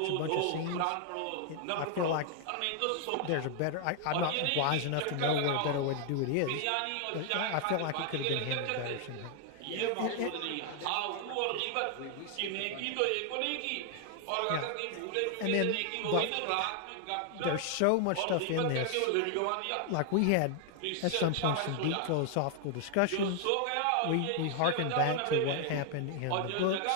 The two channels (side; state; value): both; different; correlation 0.00